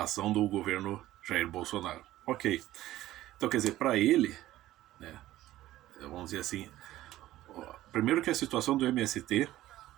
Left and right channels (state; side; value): quieter; left; 15.0 dB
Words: ação do governo Jair Bolsonaro. Ok. Então, quer dizer, para ele, né, vamos dizer assim, primeiro que a situação do MST